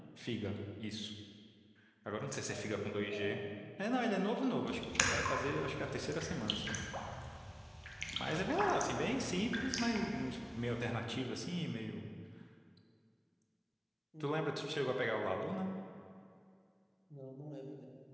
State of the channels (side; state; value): both; identical; correlation 1.00